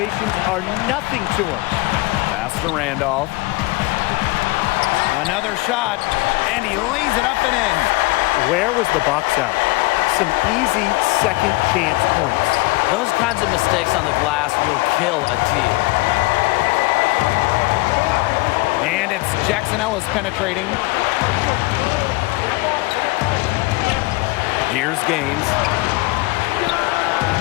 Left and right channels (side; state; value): right; quieter; 23.0 dB